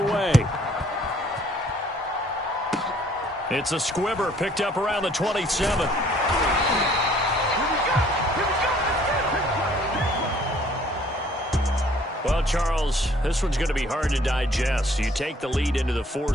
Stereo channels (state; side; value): normal; both; correlation 0.59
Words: It's a squibber picked up around the 27. Well, Charles, this one's going to be hard to digest. You take the lead into the